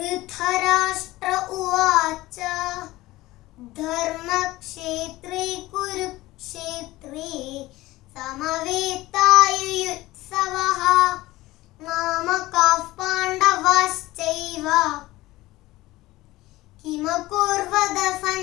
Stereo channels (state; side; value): quieter; right; 18.2 dB